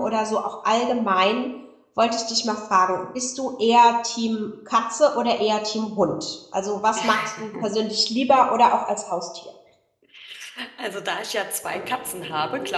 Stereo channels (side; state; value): both; identical; correlation 1.00